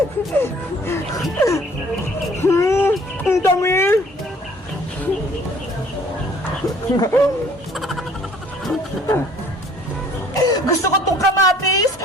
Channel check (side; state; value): both; normal; correlation 0.56